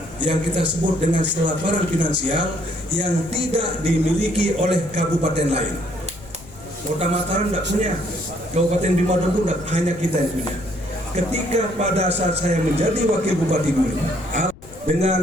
yang kita sebut dengan selaparan finansial yang tidak dimiliki oleh kabupaten lain. Kota Mataram tidak punya, Kabupaten Bima Dongko hanya kita yang punya. Ketika pada saat saya menjadi wakil bupati dulu,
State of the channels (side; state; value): left; noise; rumble, 20 dB below the sound